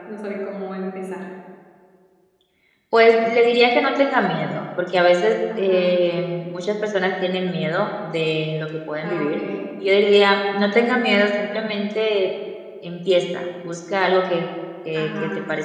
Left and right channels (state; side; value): identical; both; correlation 1.00